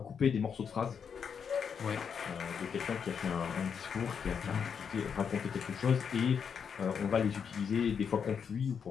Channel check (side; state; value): right; quieter; 6.9 dB